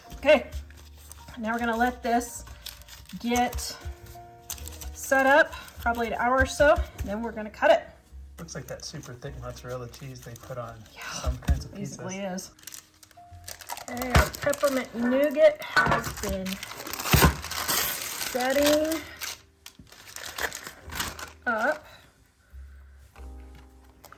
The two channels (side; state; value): both; identical; correlation 1.00